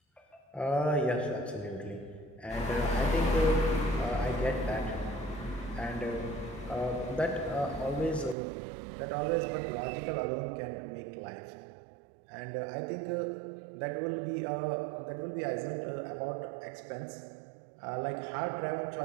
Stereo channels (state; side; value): drops out; left; at 8.3 s